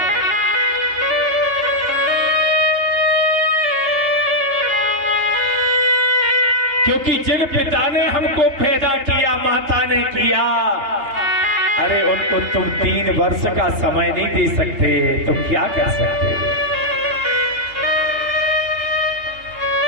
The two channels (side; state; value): left; late; 3.3 ms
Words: क्योंकि जिन पिता ने हमको पैदा किया, माता ने किया, अरे उनको तुम 3 वर्ष का समय नहीं दे सकते तो क्या कर सकते?